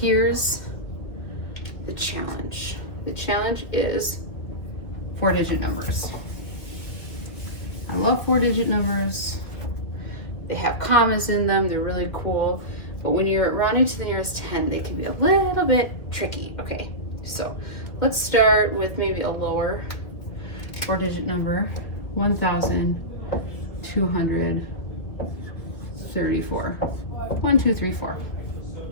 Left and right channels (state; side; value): late; right; 2.4 ms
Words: the challenge. The challenge is 4-digit numbers. I love 4-digit numbers. They have commas in them, they're really cool. But when you're rounding to the nearest 10, they can be a little bit tricky. Okay, so let's start with maybe a lower 4-digit number, 1,234. 1, 2, 3, 4.